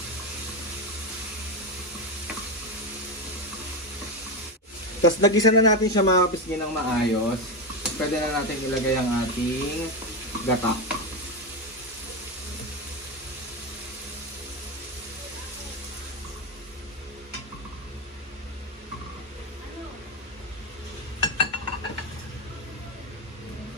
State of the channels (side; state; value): both; normal; correlation 0.12